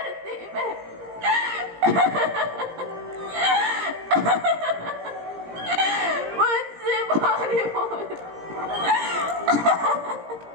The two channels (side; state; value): left; late; 17 ms